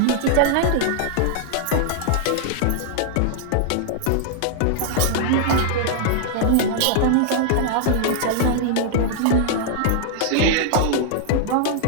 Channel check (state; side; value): different; both; correlation -0.01